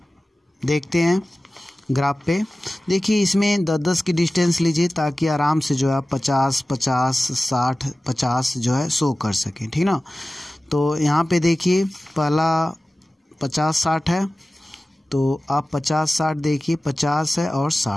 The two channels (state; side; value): normal; both; correlation 0.96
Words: देखते हैं ग्राफ पे। देखिए इसमें 10-10 की डिस्टेंस लीजिए ताकि आराम से जो है 50-50 60 50 जो है शो कर सकें, ठीक ना। तो यहाँ पे देखिए पहला 50-60 है, तो आप 50-60 देखिए, 50 है और